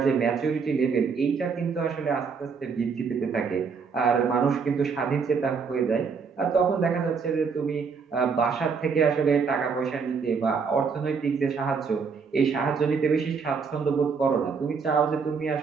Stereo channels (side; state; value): left; quieter; 5.5 dB